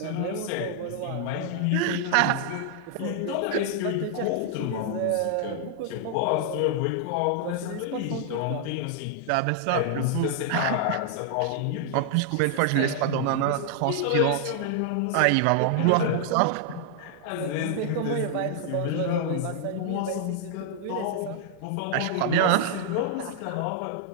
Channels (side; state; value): both; different; correlation -0.01